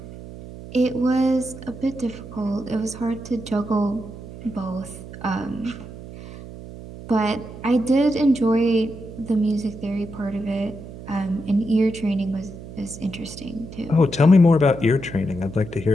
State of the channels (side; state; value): right; noise; hum, 14 dB below the sound